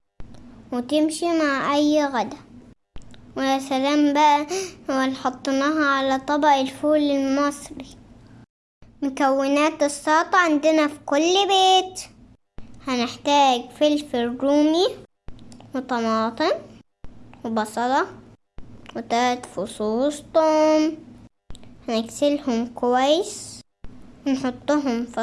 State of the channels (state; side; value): identical; both; correlation 1.00